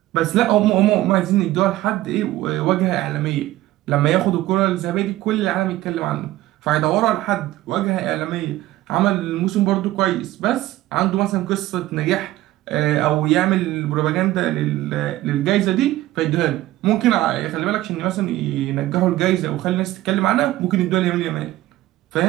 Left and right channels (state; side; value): quieter; left; 16.0 dB